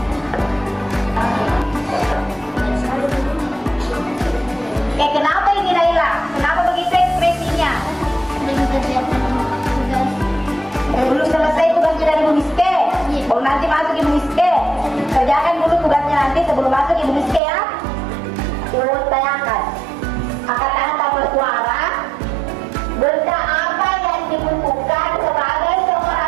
Kenapa ini Naila? Kenapa begitu ekspresinya? Belum selesai tugas dari Bu Miske. Oh, nanti masuk Ibu Miske. Kerjakan dulu tugasnya nanti sebelum masuk Ibu Miske ya. Ibu tanyakan. Angkat tangan tanpa suara. Benda apa yang dibutuhkan sebagai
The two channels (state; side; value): drops out; left; at 17.4 s